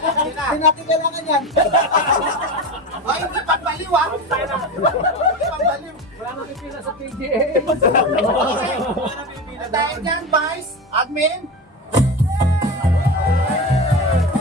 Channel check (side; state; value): both; normal; correlation 0.23